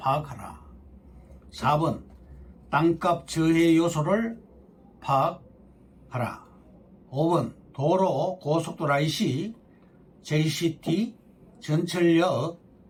4번, 땅값 저해 요소를 파악하라. 5번, 도로, 고속도로 IC, JCT, 전철역,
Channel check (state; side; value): identical; both; correlation 1.00